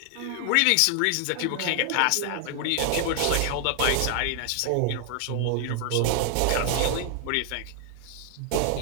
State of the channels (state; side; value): different; both; correlation 0.00